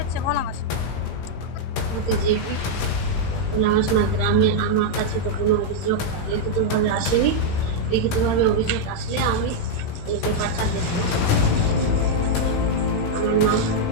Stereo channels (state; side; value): late; right; 18 ms